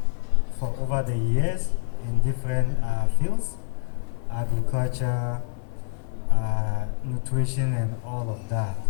for over the years in different fields, agriculture, nutrition, and all of that.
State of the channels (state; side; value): silent; right; digital silence